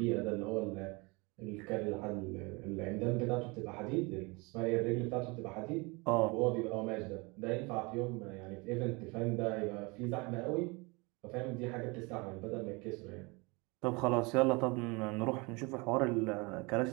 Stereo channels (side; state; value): left; quieter; 27.2 dB